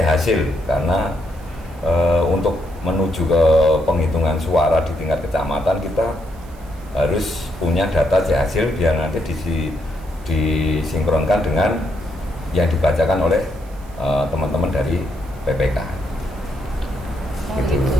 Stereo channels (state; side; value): noise; right; hiss, 27 dB below the sound